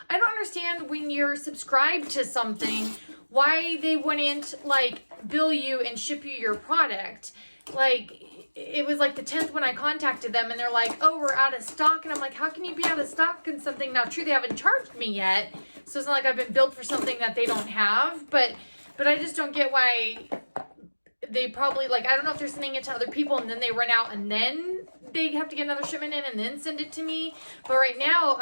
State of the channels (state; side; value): inverted; both; correlation -1.00